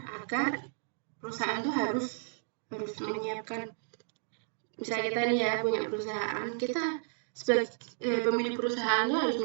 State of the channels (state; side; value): silent; left; digital silence